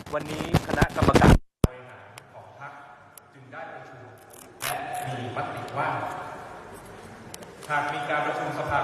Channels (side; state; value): both; identical; correlation 1.00